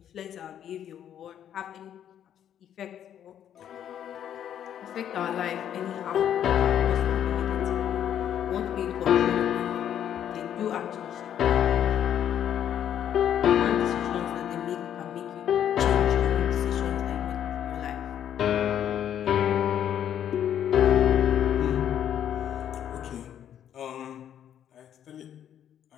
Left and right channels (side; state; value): right; quieter; 9.9 dB